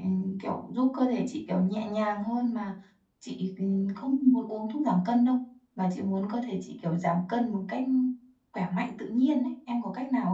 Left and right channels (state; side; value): identical; both; correlation 1.00